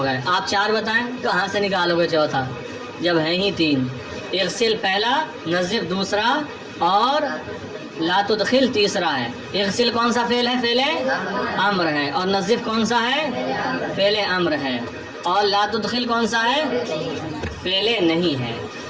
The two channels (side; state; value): both; identical; correlation 1.00